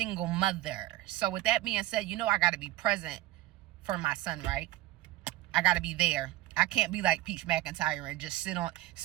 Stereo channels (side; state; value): left; quieter; 16.4 dB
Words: mother. So with that being said, I got to be present for my son, right? I got to be there. I can't be like Peach Mcintyre and just